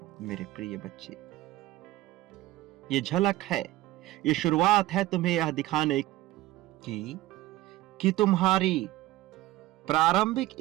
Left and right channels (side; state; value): left; quieter; 16.6 dB